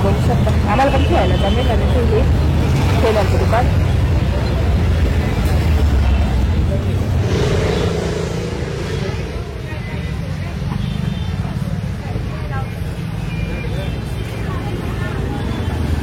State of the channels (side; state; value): both; identical; correlation 1.00